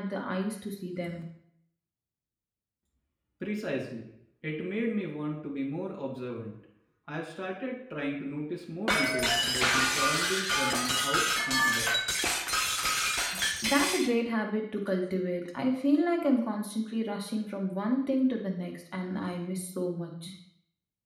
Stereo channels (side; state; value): both; identical; correlation 1.00